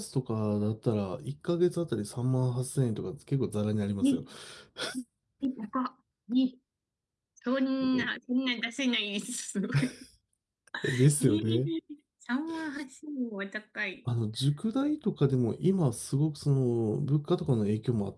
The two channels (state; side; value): identical; both; correlation 1.00